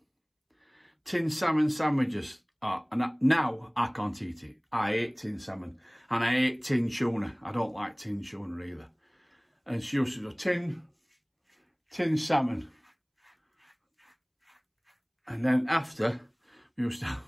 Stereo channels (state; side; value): identical; both; correlation 1.00